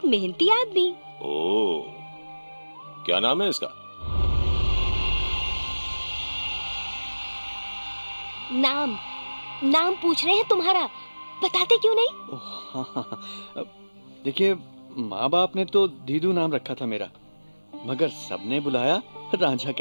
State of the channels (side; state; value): both; inverted; correlation -1.00